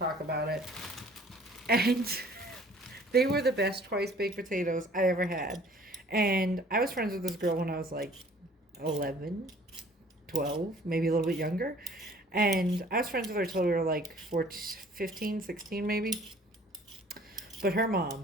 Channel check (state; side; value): normal; both; correlation 0.53